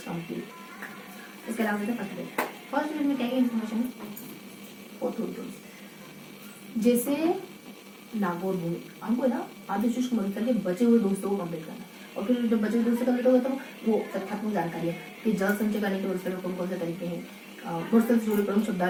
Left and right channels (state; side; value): identical; both; correlation 1.00